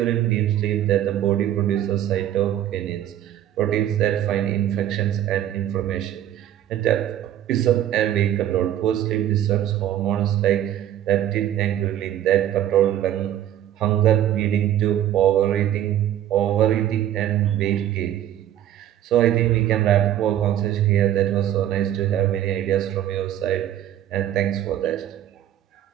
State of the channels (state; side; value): quieter; left; 11.6 dB